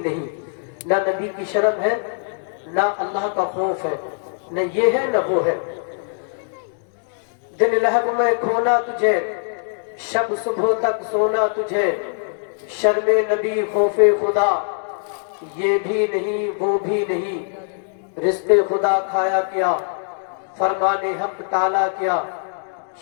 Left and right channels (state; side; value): silent; right; digital silence